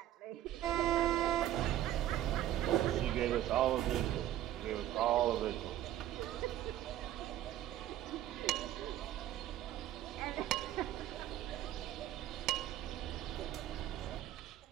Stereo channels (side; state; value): left; quieter; 12.8 dB